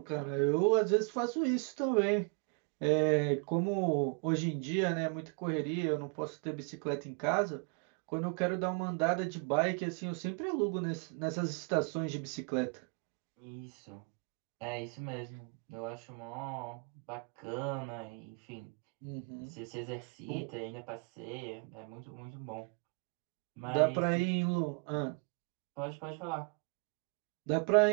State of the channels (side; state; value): left; quieter; 36.7 dB